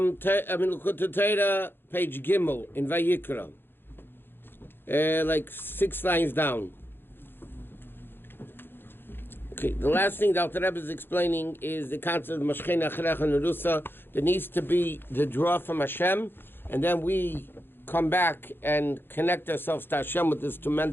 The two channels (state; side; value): late; right; 0.10 ms